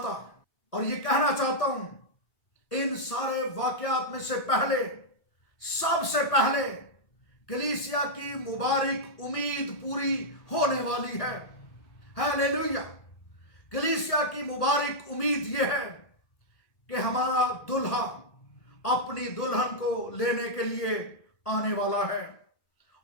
اور یہ کہنا چاہتا ہوں، ان سارے واقعات میں سے پہلے، سب سے پہلے کلیسیا کی مبارک امید پوری ہونے والی ہے۔ ہیلیلویا! کلیسیا کی مبارک امید یہ ہے کہ ہمارا دلہا اپنی دلہن کو لینے کے لیے آنے والا ہے،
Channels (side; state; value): right; late; 1.7 ms